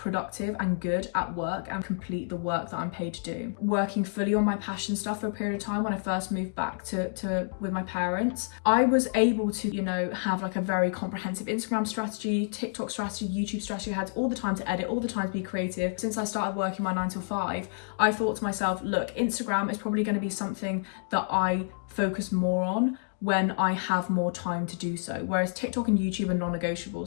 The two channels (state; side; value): silent; right; digital silence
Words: and good at work and complete the work that I'm paid to do. Working fully on my passion stuff for a period of time when I first moved back to with my parents, I was able to, you know, have like a very comprehensive Instagram strategy, TikTok strategy, YouTube strategy. I had all the time to edit, all the time to be creative. Since I started working my 9 to 5, I thought to myself, look, Instagram is probably going to be something that I focus more on when I have more time to do so. Whereas TikTok and YouTube are